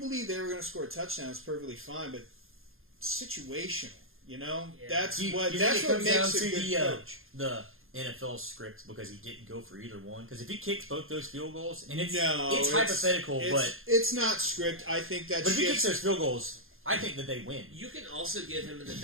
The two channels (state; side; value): late; left; 0.60 ms